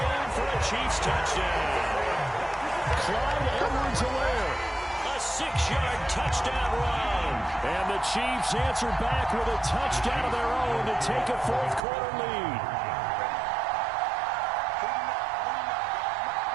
for a Chiefs touchdown. Clyde Edwards-Helaire, a 6-yard touchdown run. And the Chiefs answer back with a touchdown of their own to take a fourth-quarter lead.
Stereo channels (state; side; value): drops out; left; at 11.8 s